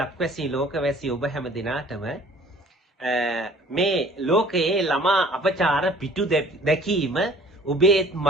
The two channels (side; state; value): both; normal; correlation 0.52